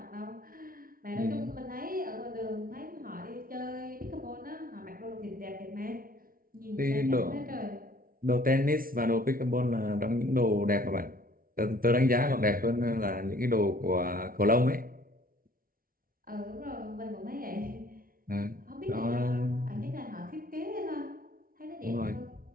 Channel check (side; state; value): left; late; 0.42 ms